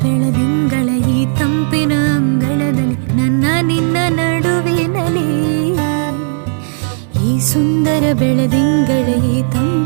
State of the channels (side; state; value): left; silent; digital silence